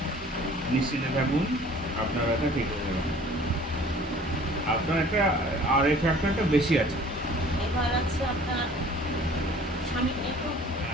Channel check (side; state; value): both; normal; correlation 0.50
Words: নিশ্চিন্তে থাকুন, আপনার ব্যথা ঠিক হয়ে যাবে। আপনার একটা আর এই ফ্যাক্টরটা বেশি আছে। এবার আছে আপনার স্বামী একটু